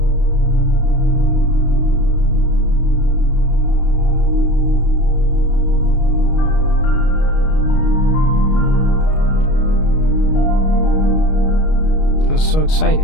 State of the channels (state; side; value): late; right; 32 ms